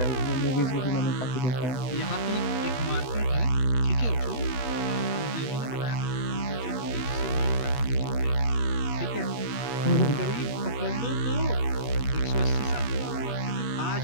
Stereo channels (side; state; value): right; late; 7.2 ms